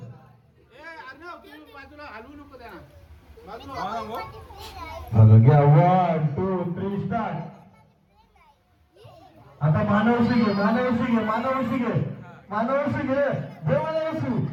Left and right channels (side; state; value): both; identical; correlation 1.00